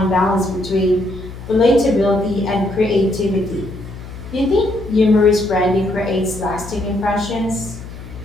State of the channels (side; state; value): left; noise; hum, 13 dB below the sound